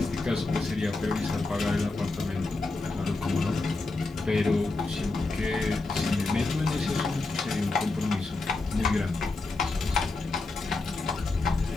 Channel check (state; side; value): quieter; right; 3.4 dB